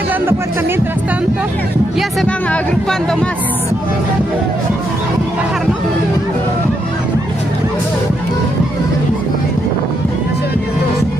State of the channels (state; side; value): normal; both; correlation 0.79